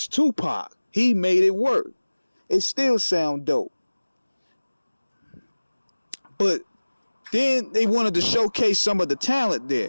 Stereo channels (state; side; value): inverted; both; correlation -1.00